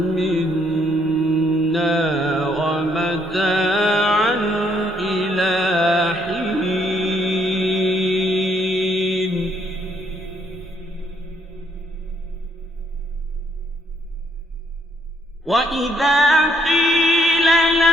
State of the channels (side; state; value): both; normal; correlation 0.70